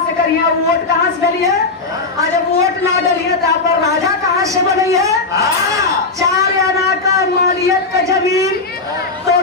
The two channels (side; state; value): right; quieter; 3.8 dB